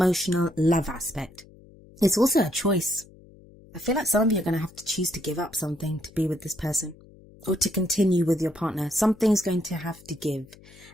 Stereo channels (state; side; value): noise; left; hum, 23 dB below the sound